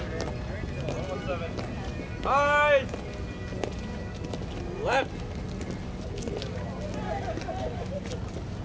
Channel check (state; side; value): identical; both; correlation 1.00